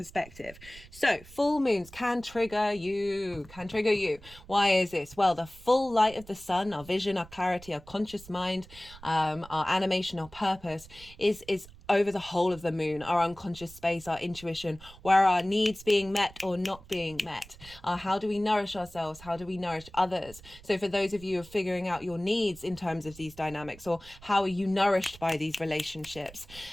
So full moons can trigger you. Why is this? Well, the full light of the sun, our vision, our clarity, our conscious mind, our animation, our purpose is over the whole of the moon, our unconscious space, our intuition, where are our needs being met or not being met? How do we nourish ourselves? How do we nourish others? So for those of you who are figuring out your needs in terms of these dynamics, or how are you nourished by these relationships,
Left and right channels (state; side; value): noise; right; rumble, 20 dB below the sound